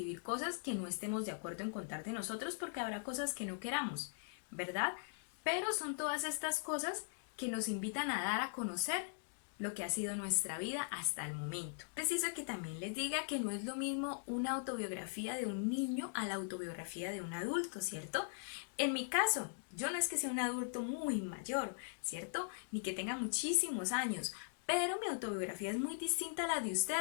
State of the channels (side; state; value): right; silent; digital silence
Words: cosas que no estemos de acuerdo en contar de nosotros porque habrá cosas que no queramos, ¿verdad? Pero son todas estas cosas que nos invitan a dar a conocer lo que ha sido nuestra vida hasta el momento. Preciso que también les diga que no es lo mismo una autobiografía de un niño a la autobiografía de un adulto, ¿cierto? En mi caso, yo no es que sea un adulto muy mayor, ¿cierto? Ni que tenga muchísimos años, pero mi autobiografía es muy distinta a la de